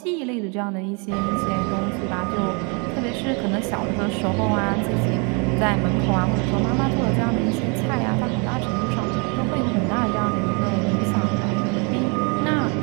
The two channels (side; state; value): left; quieter; 33.4 dB